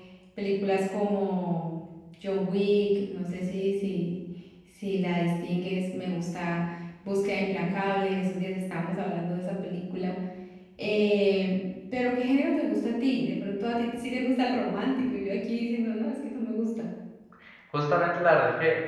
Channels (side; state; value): both; identical; correlation 1.00